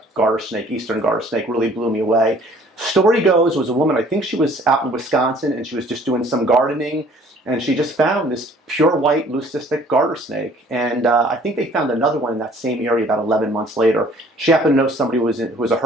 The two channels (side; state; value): both; normal; correlation 0.55